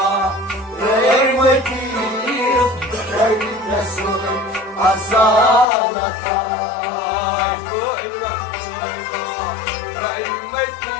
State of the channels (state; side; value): drops out; right; at 5.7 s